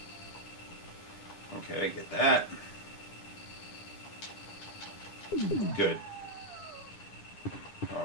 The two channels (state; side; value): late; right; 9.9 ms